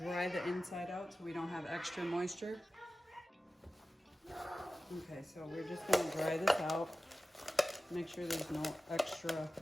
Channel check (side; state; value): both; normal; correlation 0.95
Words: the inside out so we don't have extra moisture. Okay, so we're just going to dry this out. Make sure there's no extra